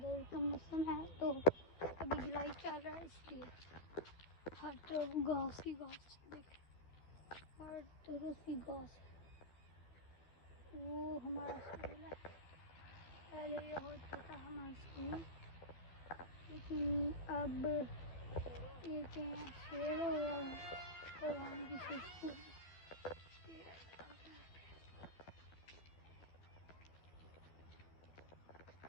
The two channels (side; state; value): right; late; 12 ms